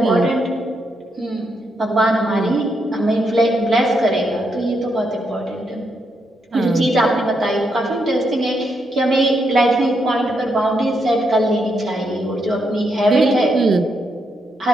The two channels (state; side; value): normal; both; correlation 0.80